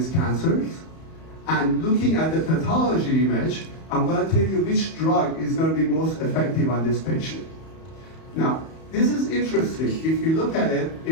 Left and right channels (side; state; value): right; late; 31 ms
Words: cancers, and looking at the pathology image, I'm going to tell you which drug is going to be most effective on this patient. Now, this is interesting. If you look at it,